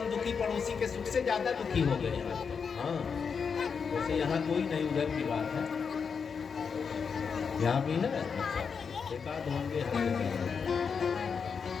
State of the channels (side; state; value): right; quieter; 6.0 dB